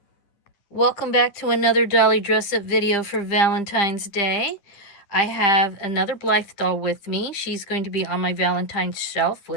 Welcome back to another dolly dress up video for Valentine's Day. I have another Blythe doll with me. She's going to be on my Valentine's shelf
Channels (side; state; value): right; late; 10 ms